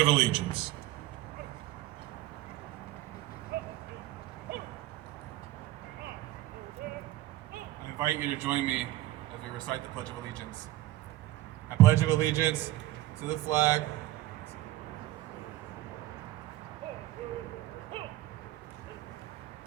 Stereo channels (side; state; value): left; quieter; 15.8 dB